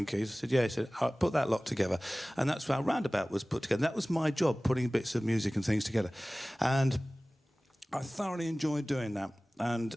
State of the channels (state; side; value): normal; both; correlation 0.98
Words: keys? I said, yeah. He said, I'll put that lot together. And that's how Roundabout was put together. That was my job, putting bits of music and things together. And I thoroughly enjoyed doing that. And